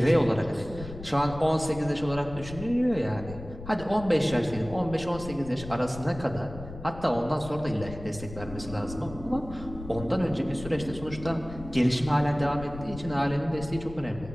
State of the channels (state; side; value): noise; left; rumble, 13 dB below the sound